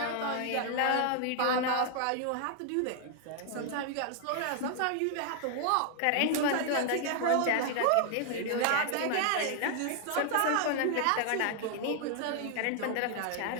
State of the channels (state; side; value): different; both; correlation 0.00